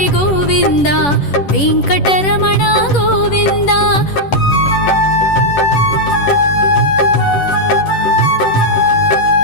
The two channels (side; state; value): right; late; 11 ms